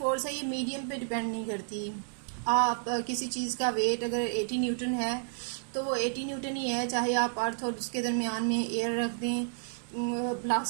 है ये मीडियम पे डिपेंड नहीं करती। आप किसी चीज़ का वेट अगर 80 न्यूटन है तो वो 80 न्यूटन ही है, चाहे आप अर्थ और उसके दरमियान में एयर रख दें,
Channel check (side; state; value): left; silent; digital silence